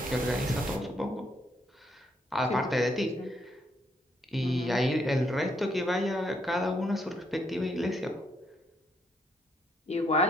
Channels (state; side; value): normal; both; correlation 0.74